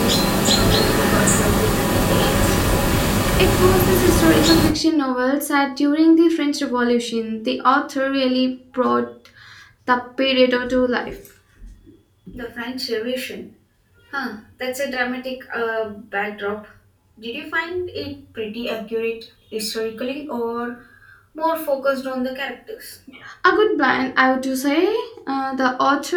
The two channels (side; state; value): both; identical; correlation 1.00